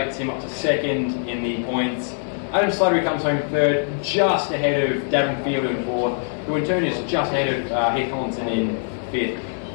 him up to second in the points. Adam Slattery comes home third, just ahead of Devon Field in fourth, who in turn is just ahead of Heath Collinson in fifth.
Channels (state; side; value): silent; right; digital silence